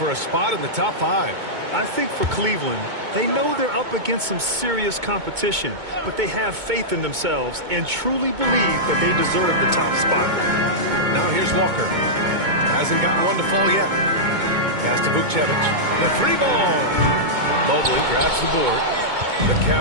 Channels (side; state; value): left; late; 2.2 ms